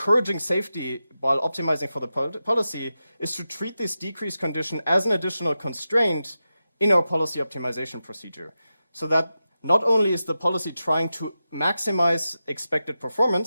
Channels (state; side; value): inverted; both; correlation -0.91